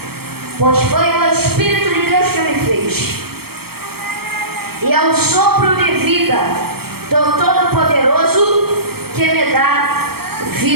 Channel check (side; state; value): left; late; 0.95 ms